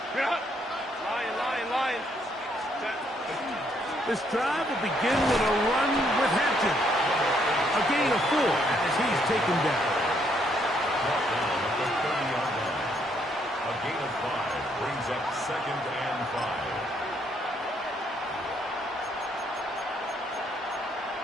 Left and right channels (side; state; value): both; normal; correlation 0.71